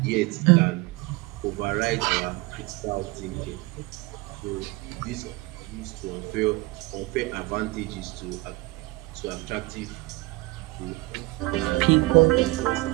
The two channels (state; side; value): quieter; left; 22.2 dB